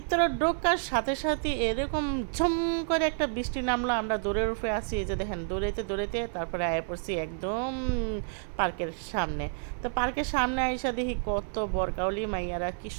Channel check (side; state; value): left; silent; 58 dB below the other